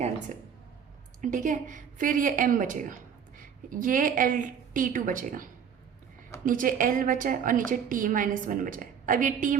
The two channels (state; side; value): quieter; left; 7.6 dB